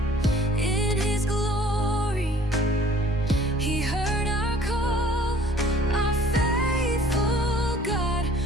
in His glory. He heard our call, our faithful God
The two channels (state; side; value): normal; both; correlation 0.53